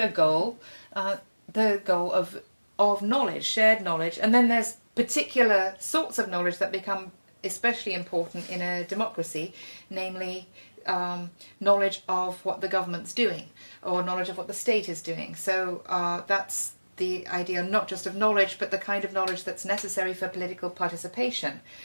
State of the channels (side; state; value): both; inverted; correlation -1.00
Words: goal, the goal of knowledge, shared knowledge. And then there's particular sorts of knowledge that become especially important in a democracy, namely knowledge of what the government's doing, or knowledge of what the state is doing. So that's the idea not just of knowledge, but the kind of knowledge that's necessary for political participation.